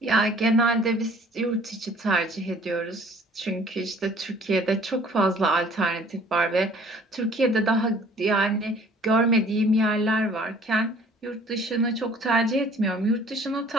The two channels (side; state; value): both; normal; correlation 0.53